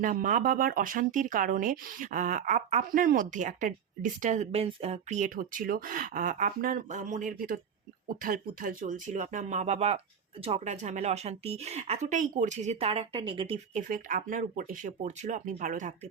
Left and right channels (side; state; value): left; quieter; 7.7 dB